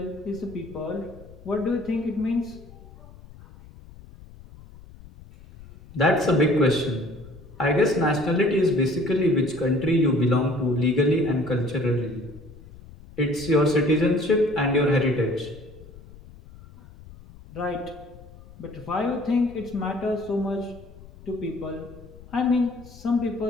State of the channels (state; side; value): noise; left; rumble, 20 dB below the sound